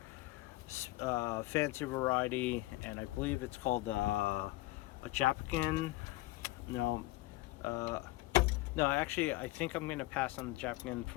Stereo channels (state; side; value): quieter; right; 18.9 dB